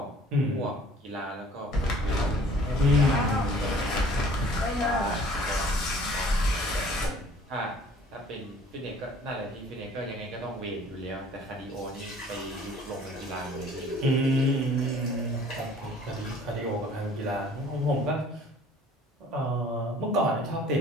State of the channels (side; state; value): both; normal; correlation 0.52